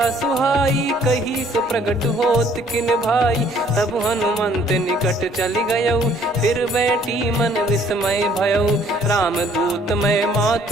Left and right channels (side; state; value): both; normal; correlation 0.60